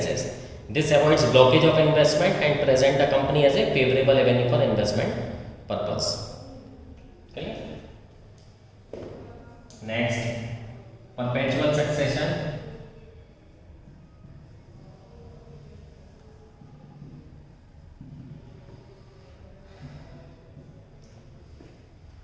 This avoids blockage of investment and present the company as a favorable avenue for investment purpose. Okay. Next, perpetual succession.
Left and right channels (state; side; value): identical; both; correlation 1.00